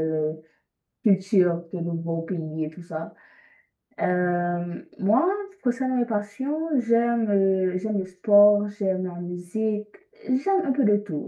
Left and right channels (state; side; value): identical; both; correlation 1.00